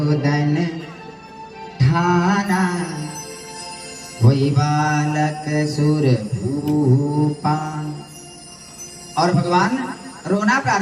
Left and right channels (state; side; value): identical; both; correlation 1.00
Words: ठाना, वही बालक सुर भूपा। और भगवान रोना